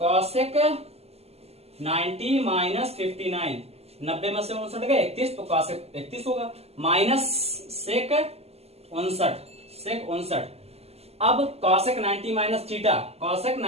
cosec 90 माइनस 59, 90 में से 59 गए 31, तो cosec 31 होगा माइनस sec 59। अब cosec 90 minus theta, cosec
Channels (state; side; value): late; left; 0.30 ms